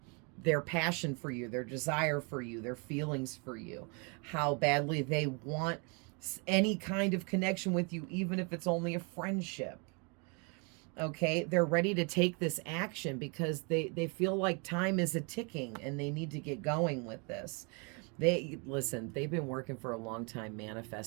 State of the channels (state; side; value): quieter; left; 33.8 dB